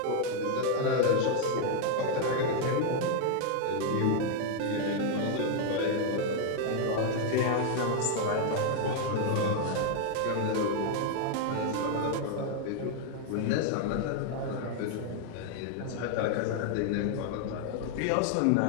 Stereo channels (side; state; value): both; different; correlation 0.01